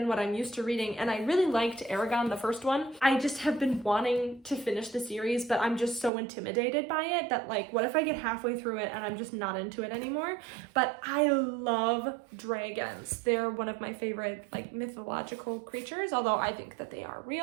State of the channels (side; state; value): left; drops out; at 6.1 s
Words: what I'm used to reading. And I really liked Eragon, the first one. I just have been wanting to finish the series, but I'm just so intimidated by it that, like, what if I get halfway through it and I'm just not into it anymore? But I love dragons. They're one of my favorite, like, mythological creatures, although I think that they are